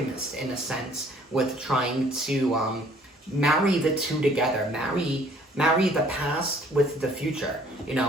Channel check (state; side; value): normal; both; correlation 0.58